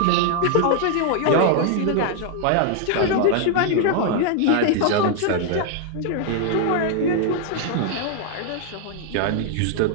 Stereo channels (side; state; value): both; different; correlation 0.00